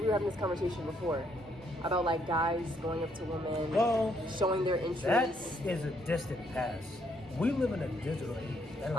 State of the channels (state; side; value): normal; both; correlation 0.70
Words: were having this conversation before about like guys going up to women, Well, showing their That interest. is a distant past. We live in a digital age, and a